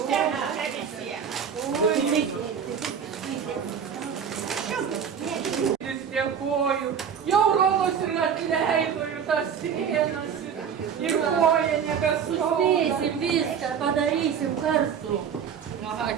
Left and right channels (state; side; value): quieter; left; 7.6 dB